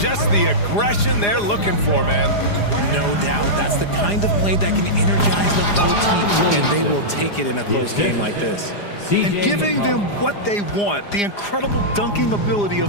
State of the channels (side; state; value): right; late; 4.9 ms